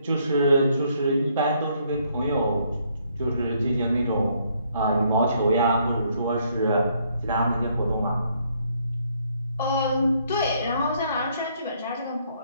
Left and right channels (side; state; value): both; inverted; correlation -0.69